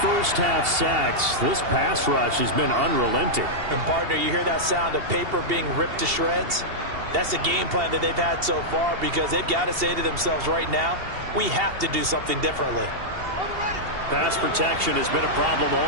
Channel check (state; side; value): late; left; 2.8 ms